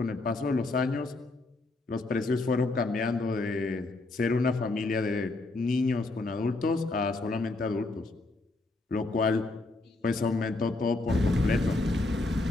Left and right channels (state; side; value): quieter; right; 3.1 dB